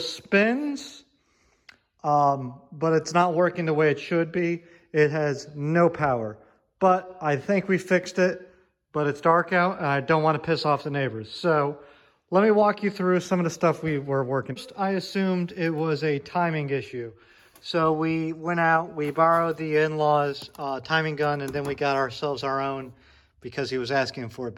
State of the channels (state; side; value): identical; both; correlation 1.00